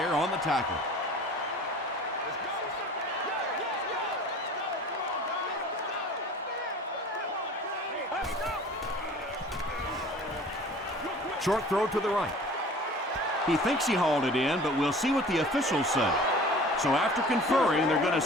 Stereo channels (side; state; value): both; normal; correlation 0.44